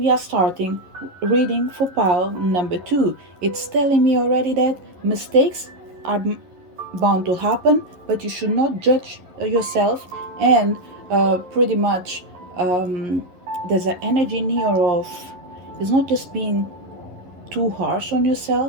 are starting reading for pile number two. It's telling me already that mistakes are bound to happen, but you should not judge yourself. And pretty much there's an energy in here of it's not just being too harsh on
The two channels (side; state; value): left; late; 11 ms